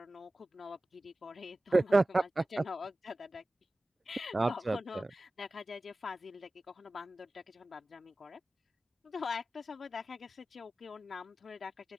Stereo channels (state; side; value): normal; both; correlation 0.96